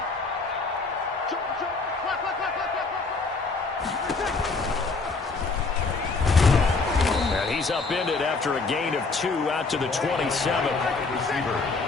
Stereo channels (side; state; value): right; quieter; 4.0 dB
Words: He's upended after a gain of 2 out to the 27. Receiver.